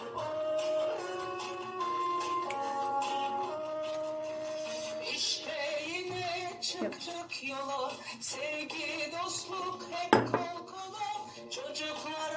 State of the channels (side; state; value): both; identical; correlation 1.00